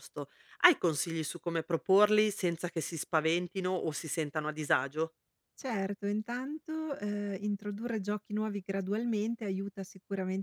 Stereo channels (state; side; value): identical; both; correlation 1.00